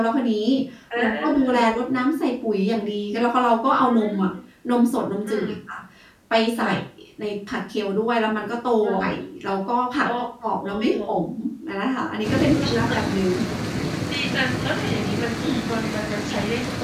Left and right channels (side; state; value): both; identical; correlation 1.00